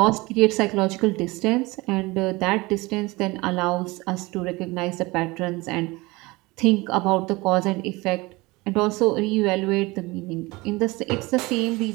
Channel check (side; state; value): left; quieter; 22.7 dB